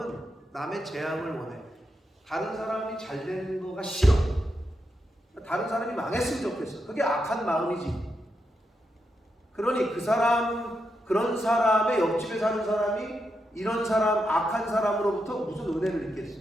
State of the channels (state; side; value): normal; both; correlation 0.84